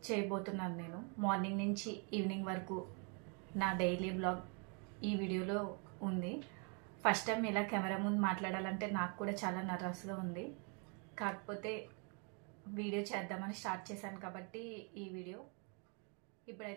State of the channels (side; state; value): left; quieter; 36.7 dB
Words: చేయబోతున్నాను. నేను మార్నింగ్ నుంచి ఈవినింగ్ వరకు నా డైలీ బ్లాగ్ ఈ వీడియోలో ఉంది. ఫస్ట్ టైం ఇలా కెమెరా ముందు మాట్లాడాలంటే నాకు కూడా చాలా నర్వస్గా ఉంది. కాకపోతే వీడియో చేద్దామని స్టార్ట్ చేశాను కాబట్టి ఈ వీడియో.